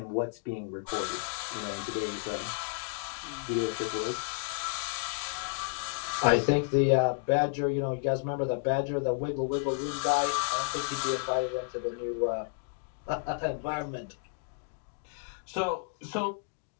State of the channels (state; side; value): silent; right; digital silence